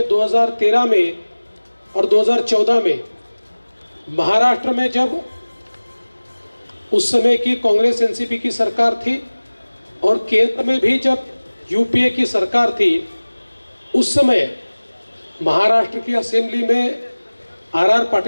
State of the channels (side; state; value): both; inverted; correlation -1.00